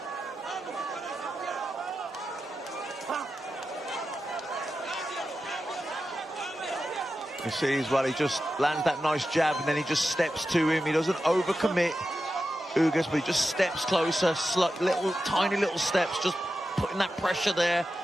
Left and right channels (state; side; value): normal; both; correlation 0.91